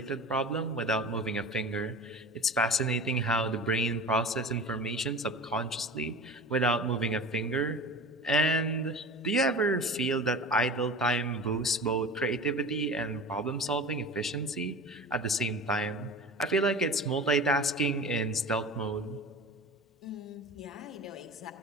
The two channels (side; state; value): both; normal; correlation 0.34